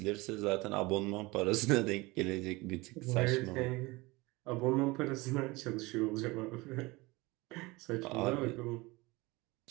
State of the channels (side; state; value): left; quieter; 22.8 dB